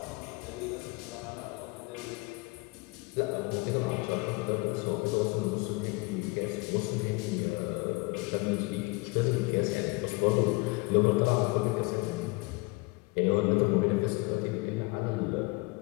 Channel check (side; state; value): right; quieter; 25.5 dB